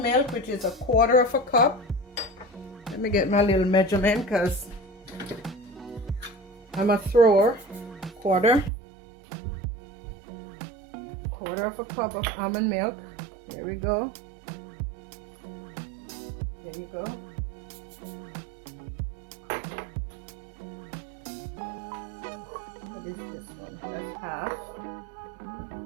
milk, which is 1/4 cup. Let me get my little measurement because I'm a thrower. 1/4 cup of almond milk. Here we go. There you go. What is this one? That's half.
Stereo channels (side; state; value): left; drops out; at 8.7 s